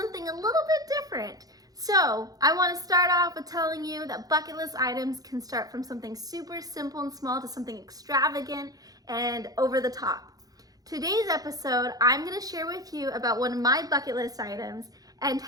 a little bit different. So I want to start off with telling you that bucket list items can start from something super simple and small to something extravagant and over the top. Today's episode, I'm going to share with you about one of my bucket list items and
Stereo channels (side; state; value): left; late; 0.18 ms